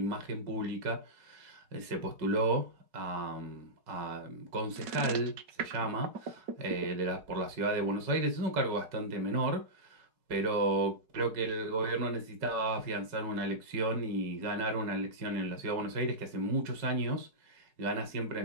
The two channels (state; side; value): late; left; 4.7 ms